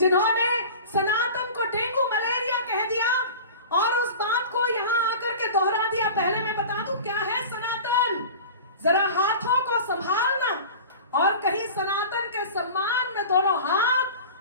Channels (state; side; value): inverted; both; correlation -0.36